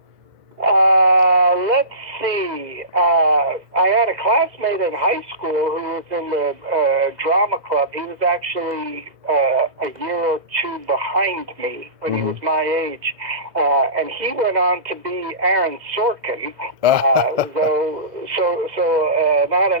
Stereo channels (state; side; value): late; left; 2.0 ms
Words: Let's see. I had a classmate in high school who was in the drama club. He was actually a year or two behind me when he was my age. And he went on to be Aaron Sorkin. So not